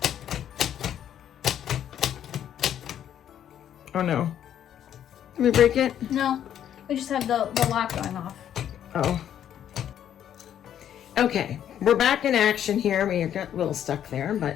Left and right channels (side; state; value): right; quieter; 10.1 dB